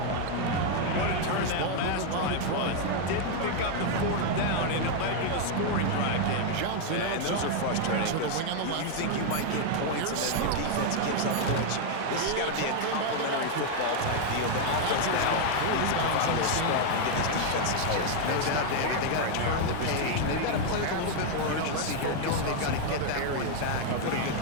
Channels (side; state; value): both; different; correlation 0.00